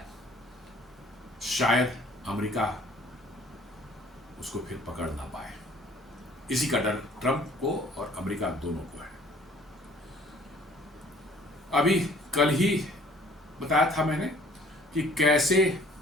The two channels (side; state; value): both; normal; correlation 0.55